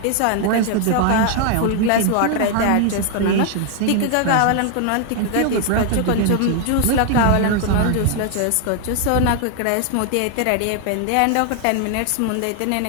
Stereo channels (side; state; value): both; different; correlation 0.00